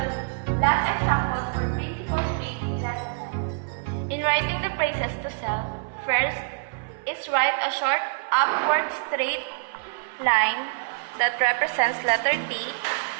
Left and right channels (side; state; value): left; quieter; 36.6 dB